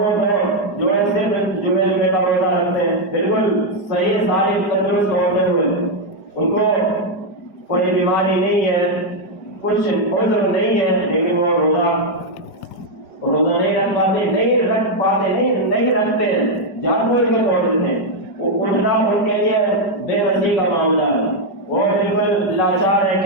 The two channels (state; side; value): late; right; 4.9 ms